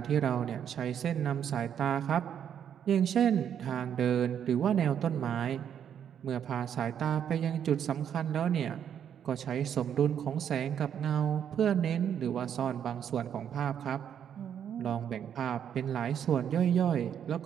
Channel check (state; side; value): quieter; left; 8.8 dB